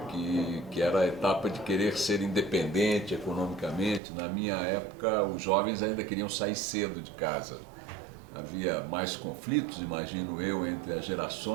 que era a etapa de querer ser independente economicamente. Na minha época, os jovens ainda queriam sair cedo de casa. Havia mais conflitos, imagino eu, entre as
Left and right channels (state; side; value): drops out; left; at 4.0 s